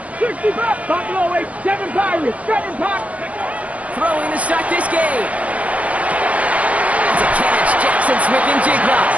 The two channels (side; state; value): left; late; 0.067 ms